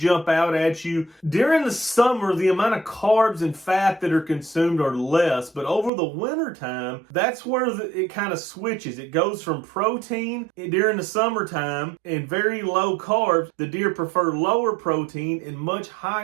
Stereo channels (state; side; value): drops out; left; at 5.9 s